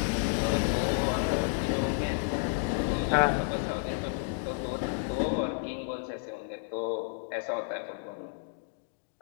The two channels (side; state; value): right; silent; digital silence